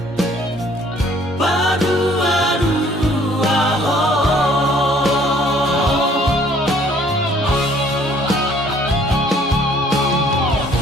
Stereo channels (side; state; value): both; normal; correlation 0.59